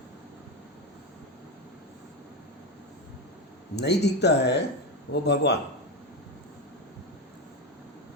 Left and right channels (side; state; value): both; normal; correlation 0.13